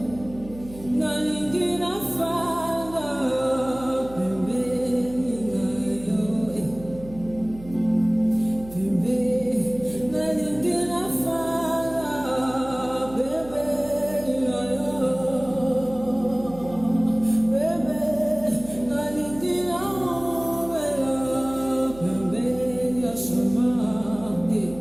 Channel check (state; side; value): noise; right; hum, 17 dB below the sound